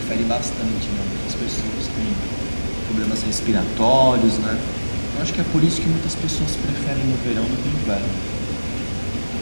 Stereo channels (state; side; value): inverted; both; correlation -1.00